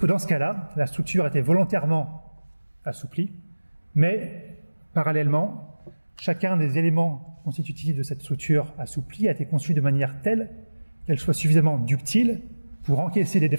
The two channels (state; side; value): inverted; both; correlation -1.00